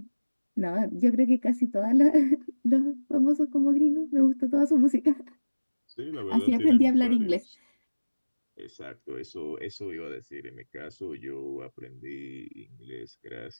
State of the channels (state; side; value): inverted; both; correlation -1.00